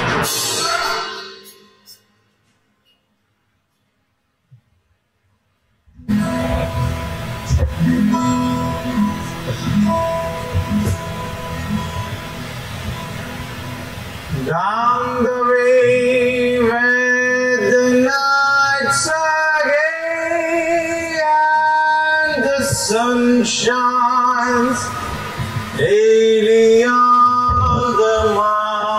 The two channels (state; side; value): identical; both; correlation 1.00